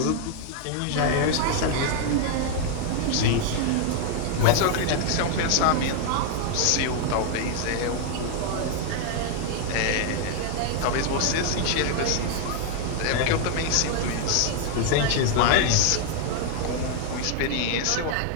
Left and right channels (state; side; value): different; both; correlation 0.00